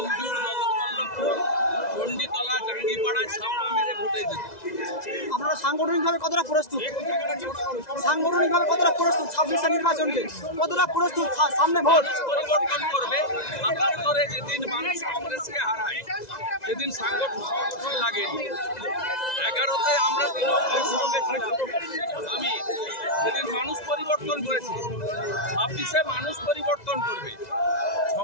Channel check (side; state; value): right; late; 2.0 ms